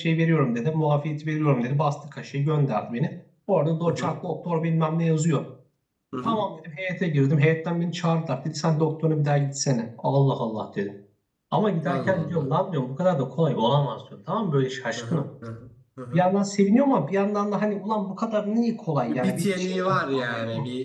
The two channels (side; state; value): both; identical; correlation 1.00